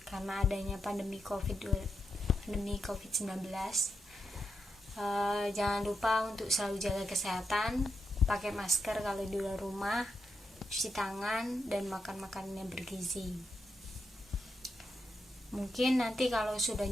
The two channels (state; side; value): normal; both; correlation 0.85